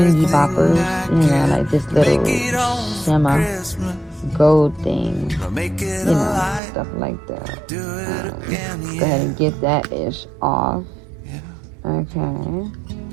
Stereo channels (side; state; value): left; drops out; at 6.6 s